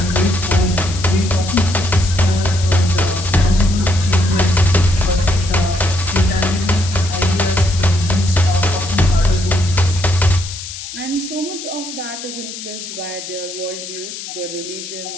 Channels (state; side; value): noise; left; hiss, 10 dB below the sound